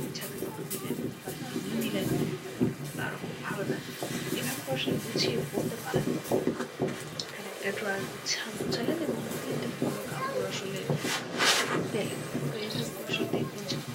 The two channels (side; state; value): both; identical; correlation 1.00